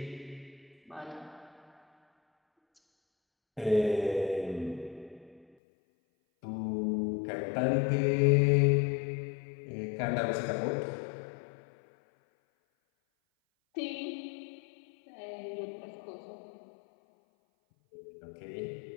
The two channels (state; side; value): drops out; right; at 5.5 s